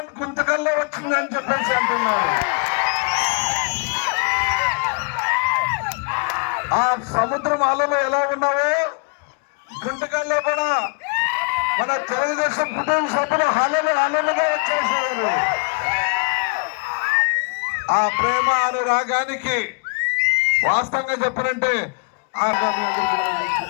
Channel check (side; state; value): right; quieter; 34.2 dB